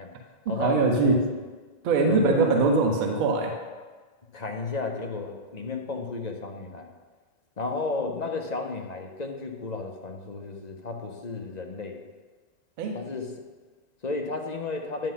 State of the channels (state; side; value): late; right; 1.9 ms